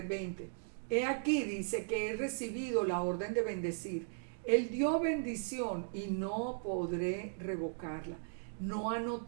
He aquí, dice, que he recibido la orden de bendecir. Él dio bendición y no podré revocarla. No ha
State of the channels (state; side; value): silent; left; digital silence